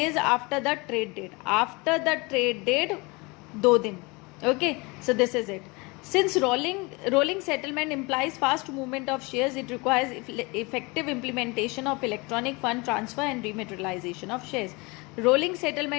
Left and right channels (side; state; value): right; quieter; 26.5 dB